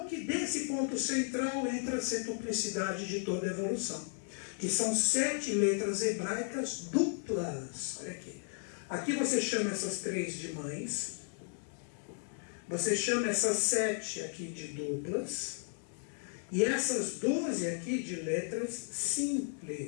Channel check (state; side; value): silent; right; 55 dB below the other